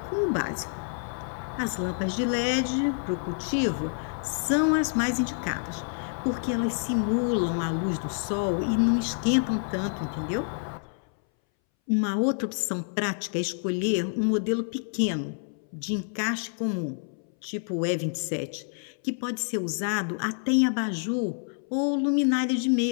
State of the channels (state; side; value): silent; right; 59 dB below the other